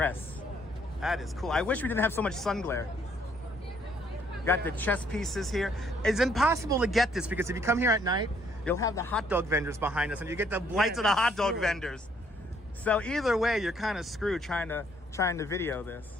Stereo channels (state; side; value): normal; both; correlation 0.66